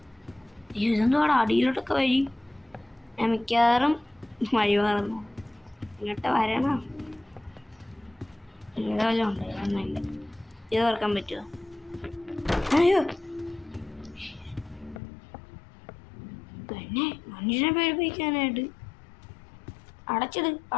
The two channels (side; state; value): right; drops out; at 15.0 s